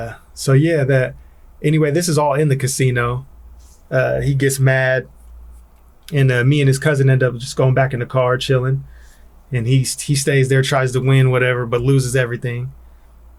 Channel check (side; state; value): both; identical; correlation 1.00